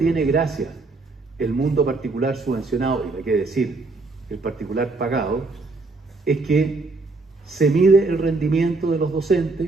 gracia el mundo particular subvencionado, y hay que decir, el particular pagado, es que se mide el rendimiento de los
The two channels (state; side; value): quieter; left; 3.5 dB